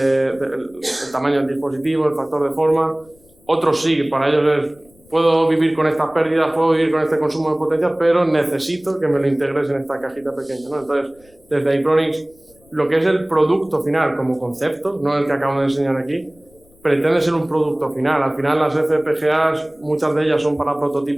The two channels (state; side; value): noise; left; rumble, 30 dB below the sound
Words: tamaño del dispositivo, el factor de forma. Otros sí, para ellos es: puedo vivir con estas pérdidas, puedo vivir con este consumo de potencia, pero necesito que me lo integres en esta cajita pequeña, ¿no? Entonces, desde Itronix, lo que es el producto final como concepto, no el que acabo de enseñar aquí, pretende ser un producto final. Al final, las FPGAs, muchas de ellas son para